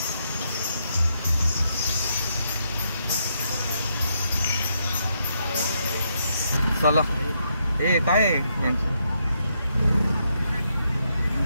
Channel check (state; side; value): inverted; both; correlation -0.78